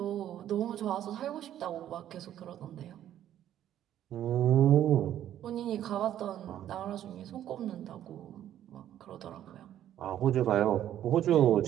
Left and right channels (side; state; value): left; quieter; 11.4 dB